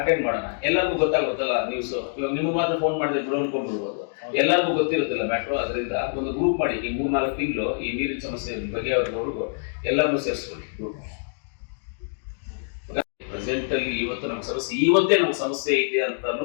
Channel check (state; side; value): silent; right; digital silence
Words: ಅಟೆಂಡ್ ಮಾಡೋಣ. ಎಲ್ಲರಿಗೂ ಗೊತ್ತಾಗುತ್ತಲ್ಲ ನ್ಯೂಸ್. ಇವಾಗ ನಿಮ್ಗೆ ಮಾತ್ರ ಫೋನ್ ಮಾಡಿದ್ರೆ ಬಿಡು ಅನ್ಕೊಂಡ್ಬಿಡ್ಬೋದು, ಎಲ್ಲರಿಗೂ ಗೊತ್ತಿರುತ್ತಿಲ್ಲ ಮ್ಯಾಟ್ರು. ಅದರಿಂದ ಒಂದು ಗ್ರೂಪ್ ಮಾಡಿ ಈ 3-4 ತಿಂಗಳು ಈ ನೀರಿನ ಸಮಸ್ಯೆ ಬಗ್ಗೆ ಅವ್ರಿಗೂ ಎಲ್ಲರನ್ನೂ ಸೇರಿಸ್ಕೊಳ್ಳಿ ಗ್ರೂಪ್. ಪ್ರೆಸೆಂಟ್ ಅಲ್ಲಿ ಇವತ್ತು ನಮ್ಗೆ ಸಮಸ್ಯೆ, ಇವತ್ತೇ ನಮ್ಗೆ ಸಮಸ್ಯೆ ಇದೆ ಅಂತ